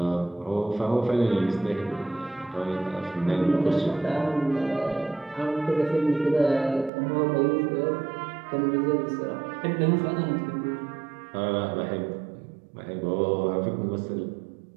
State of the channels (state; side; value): drops out; left; at 6.9 s